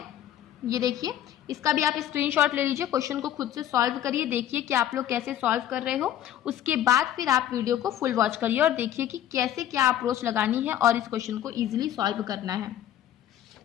ये देखिए, इसका भी आप स्क्रीनशॉट ले लीजिए, क्वेश्चन को खुद से सॉल्व करिए, देखिए कि आप लोग कैसे सॉल्व कर रहे हो। उसके बाद फिर आप वीडियो को फुल वॉच करिए और देखिए कि कैसे क्या अप्रोच लगानी है और इस क्वेश्चन को इजीली सॉल्व करना है।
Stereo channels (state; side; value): quieter; right; 11.5 dB